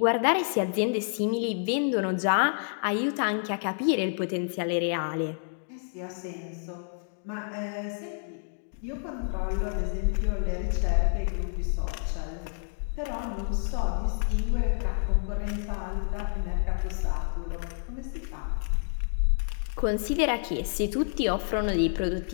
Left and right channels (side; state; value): right; silent; digital silence